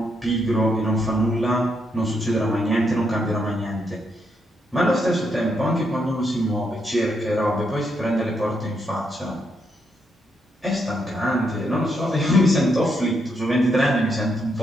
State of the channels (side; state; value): both; normal; correlation 0.78